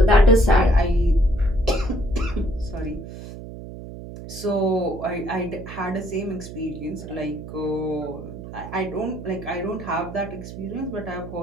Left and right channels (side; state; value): right; noise; hum, 12 dB below the sound